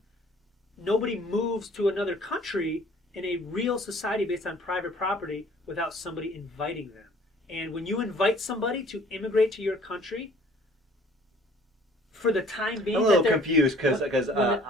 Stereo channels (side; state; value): both; normal; correlation 0.54